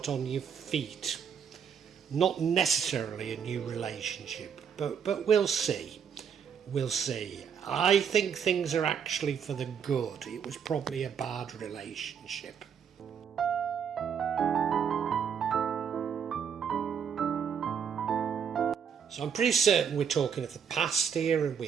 on your feet. Not necessarily a new relationship, but we'll see. We'll see. I think things are actually for the good. It was probably a bad relationship. So I'm pretty certain we're talking of the past here, and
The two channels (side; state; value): left; quieter; 7.4 dB